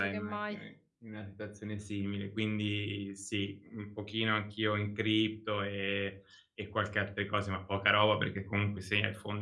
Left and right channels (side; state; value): both; identical; correlation 1.00